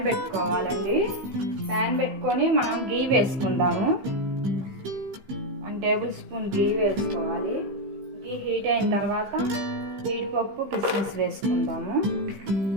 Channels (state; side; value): late; left; 15 ms